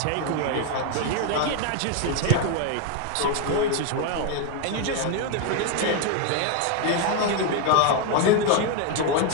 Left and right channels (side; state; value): both; different; correlation 0.01